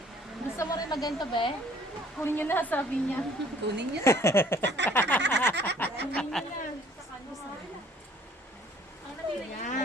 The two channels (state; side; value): normal; both; correlation 0.57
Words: Gusto mo rin magganto, be? Kunin niyo na, sabi niya. Kunin niyo na. Kunin niyo na.